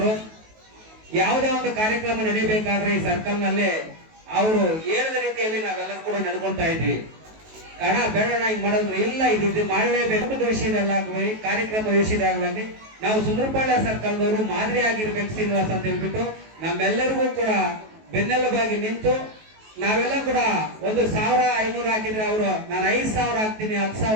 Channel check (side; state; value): left; late; 19 ms